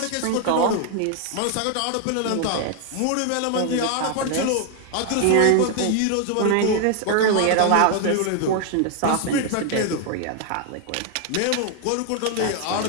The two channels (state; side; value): different; both; correlation 0.00